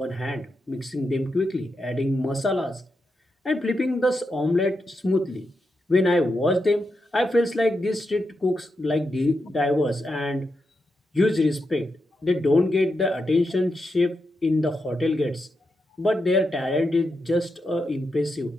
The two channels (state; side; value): normal; both; correlation 0.86